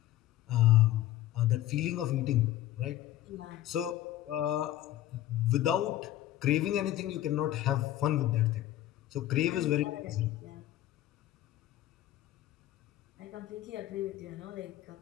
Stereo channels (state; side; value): quieter; right; 13.8 dB